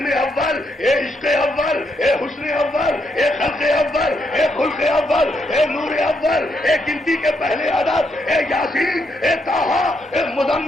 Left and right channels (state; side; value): normal; both; correlation 0.78